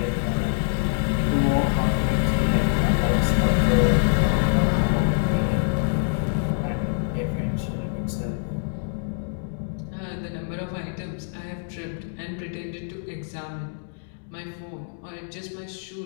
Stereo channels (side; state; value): right; silent; digital silence